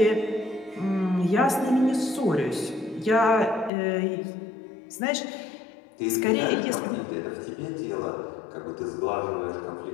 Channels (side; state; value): right; drops out; at 3.7 s